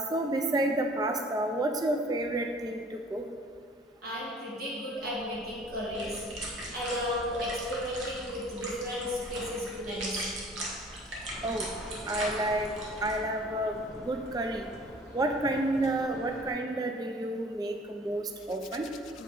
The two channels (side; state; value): both; normal; correlation 0.51